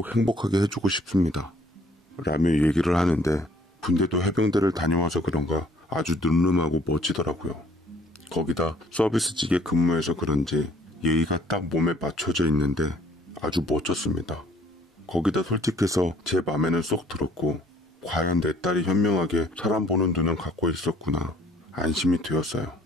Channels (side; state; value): both; normal; correlation 0.58